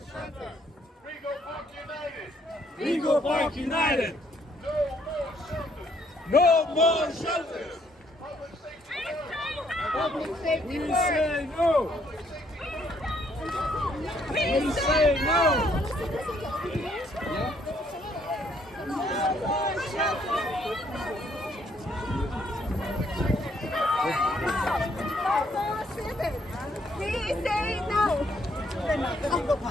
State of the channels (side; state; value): both; normal; correlation 0.69